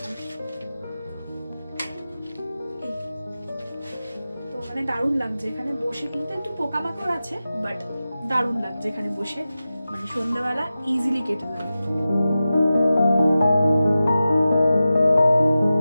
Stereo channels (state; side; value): inverted; both; correlation -0.94